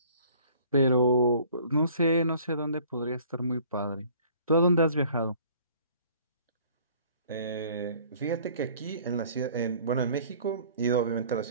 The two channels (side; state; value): both; inverted; correlation -0.54